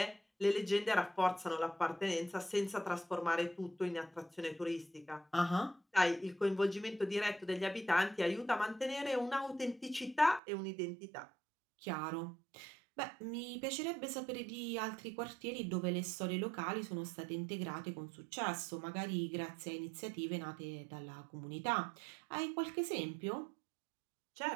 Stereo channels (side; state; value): left; drops out; at 10.4 s